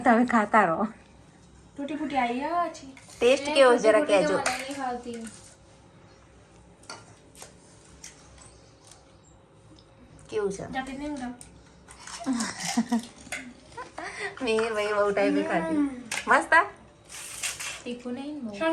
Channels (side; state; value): both; identical; correlation 1.00